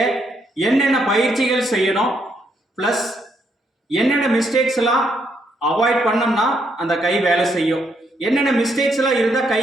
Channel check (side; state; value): both; normal; correlation 0.75